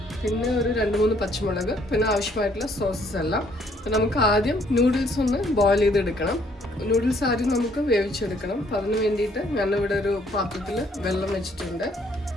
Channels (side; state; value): both; normal; correlation 0.65